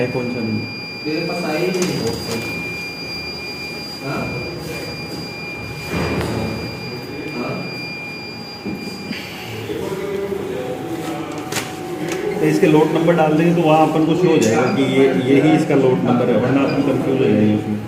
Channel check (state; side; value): identical; both; correlation 1.00